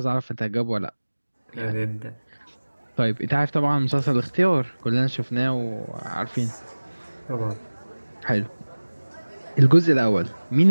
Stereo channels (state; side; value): inverted; both; correlation -1.00